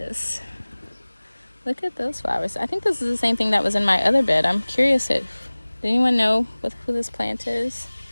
Look at those flowers. I think this is the same thing that was in my other bed. I'm curious did anyone know who this plant is?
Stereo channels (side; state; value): both; inverted; correlation -1.00